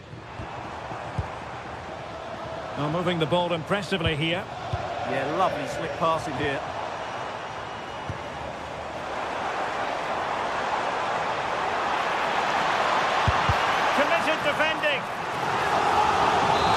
Oh, moving the ball impressively here. Yeah, lovely slick passing here. Committed defending.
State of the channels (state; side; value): identical; both; correlation 1.00